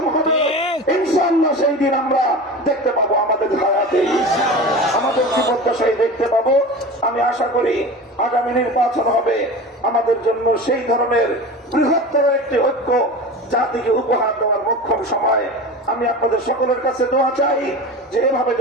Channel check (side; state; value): both; normal; correlation 0.32